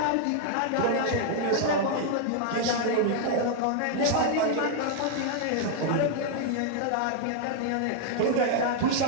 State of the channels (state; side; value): different; both; correlation 0.00